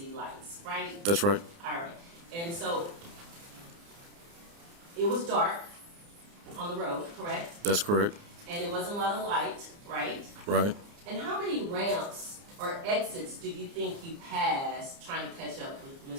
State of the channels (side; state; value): left; late; 29 ms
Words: lights, right? That's right. All right. And so it was dark on the road, correct? That's correct. And it wasn't a lot of light, right? Right. And how many ramps or exits do you think you passed trying to catch up with